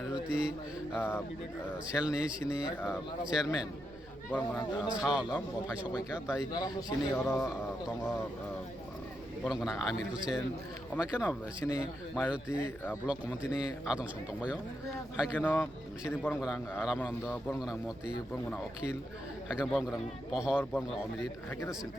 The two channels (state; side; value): noise; right; rumble, 22 dB below the sound